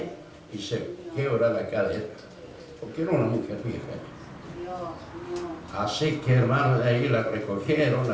y se quiebra la cadera, porque era una mujer vieja. Así que, hermano, de ahí la recogieron,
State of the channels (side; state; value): both; identical; correlation 1.00